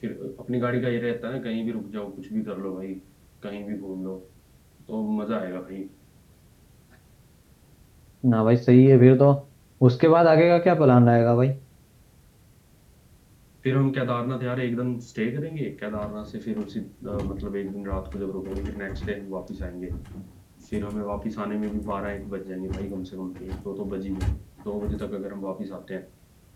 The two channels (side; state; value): both; identical; correlation 1.00